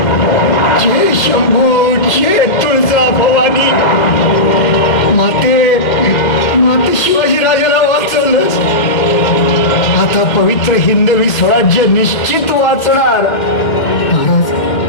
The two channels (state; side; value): late; right; 2.1 ms